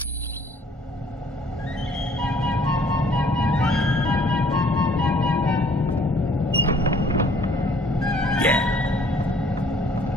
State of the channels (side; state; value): both; normal; correlation 0.59